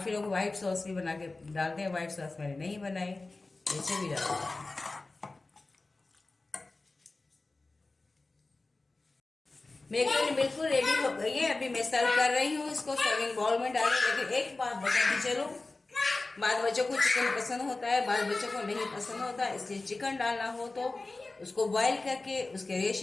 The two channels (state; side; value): quieter; right; 3.3 dB